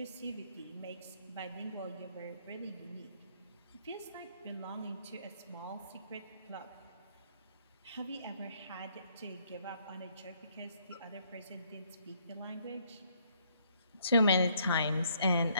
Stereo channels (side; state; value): both; inverted; correlation -0.68